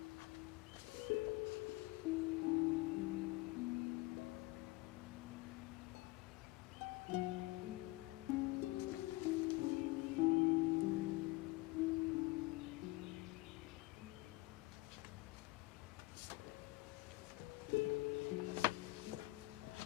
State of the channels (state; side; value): quieter; right; 21.4 dB